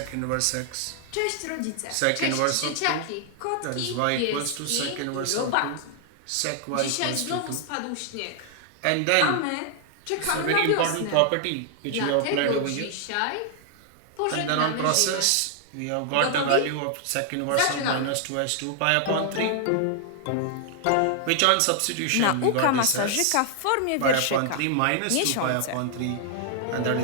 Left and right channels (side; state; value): both; different; correlation 0.00